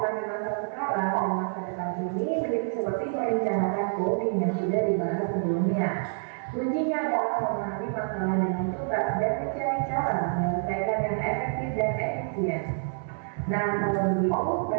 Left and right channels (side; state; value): left; silent; 60 dB below the other